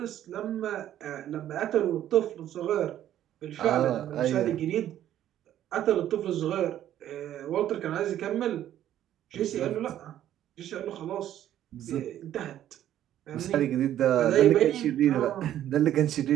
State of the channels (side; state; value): left; quieter; 11.8 dB